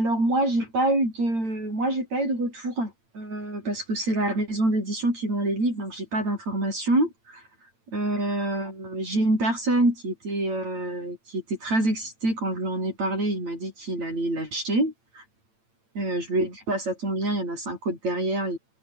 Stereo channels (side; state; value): left; late; 8.9 ms